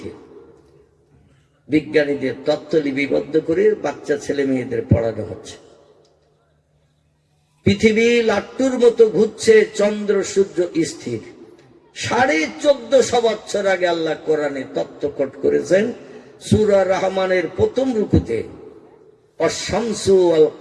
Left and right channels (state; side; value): identical; both; correlation 1.00